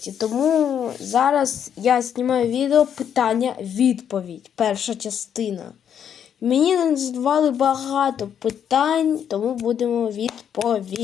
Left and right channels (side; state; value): right; quieter; 8.7 dB